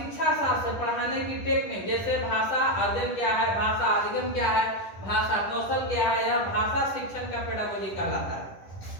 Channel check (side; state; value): right; late; 10 ms